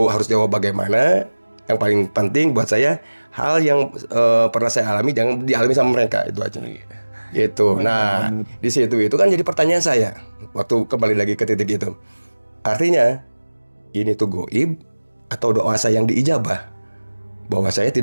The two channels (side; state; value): both; inverted; correlation -1.00